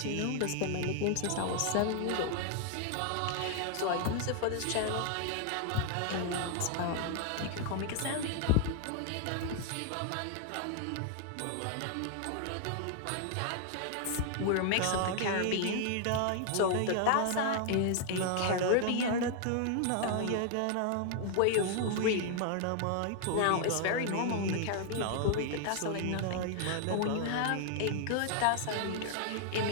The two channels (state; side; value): different; both; correlation 0.00